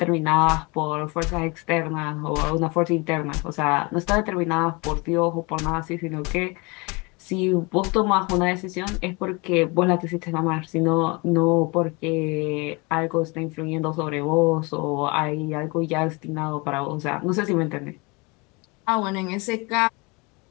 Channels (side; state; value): right; quieter; 27.6 dB